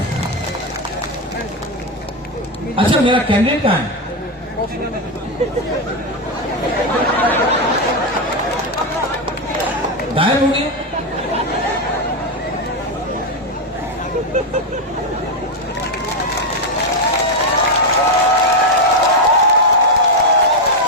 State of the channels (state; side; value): normal; both; correlation 0.06